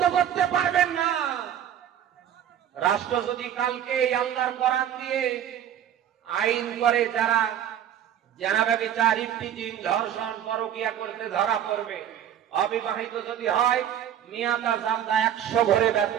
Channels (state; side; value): quieter; left; 10.1 dB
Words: করতে পারবেন না। রাষ্ট্র যদি কালকে আল্লাহর কোরআন দিয়ে আইন করে যারা জেনা, ব্যভিচার, ইফটিজিং, ধর্ষণ, পরকীয়া করতে ধরা পড়বে, অবিবাহিত যদি হয় মিয়াটা জালদা 100 ঘরে